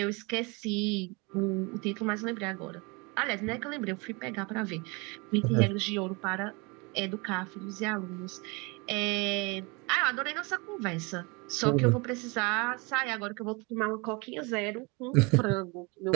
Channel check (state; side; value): quieter; left; 28.4 dB